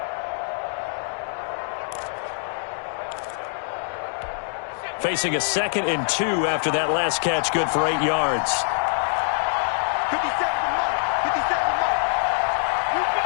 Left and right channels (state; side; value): silent; right; digital silence